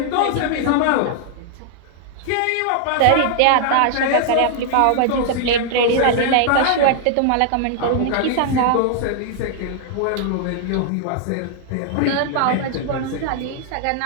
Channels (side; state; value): both; different; correlation -0.01